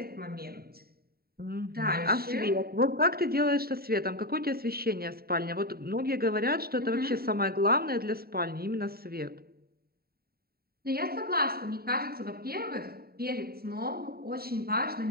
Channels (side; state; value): left; late; 0.45 ms